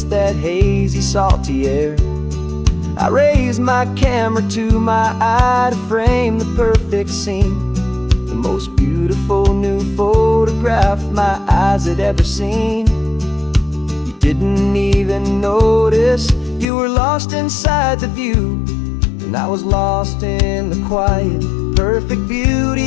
that hazy, salty air. I raised my camera to my eye to frame the perfect scene, the most beautiful new photograph my eyes had ever seen. You didn't even notice, you were lost inside the view, and I was lost in the quiet, perfect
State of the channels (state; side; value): drops out; right; at 16.7 s